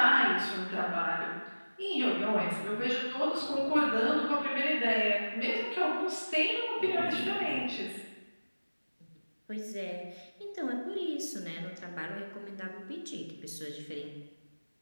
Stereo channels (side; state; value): both; inverted; correlation -1.00